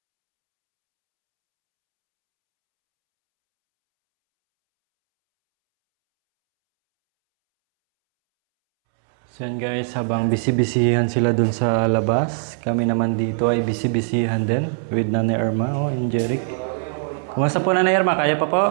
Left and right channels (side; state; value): left; silent; 65 dB below the other